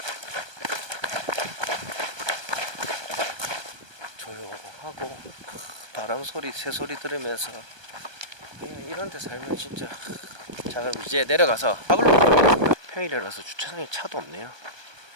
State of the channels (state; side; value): late; left; 1.2 ms